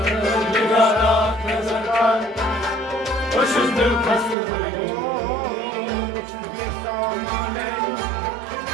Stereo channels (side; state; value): left; drops out; at 4.4 s